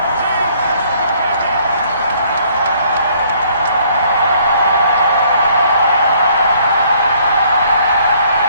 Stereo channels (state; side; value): inverted; both; correlation -0.62